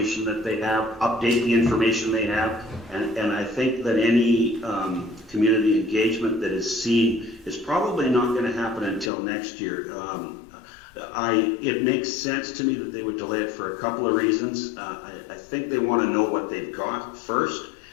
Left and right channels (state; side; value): drops out; right; at 9.1 s